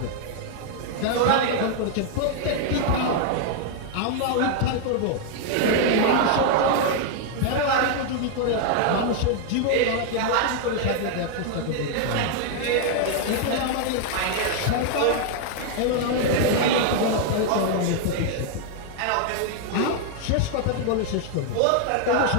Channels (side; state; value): both; different; correlation 0.00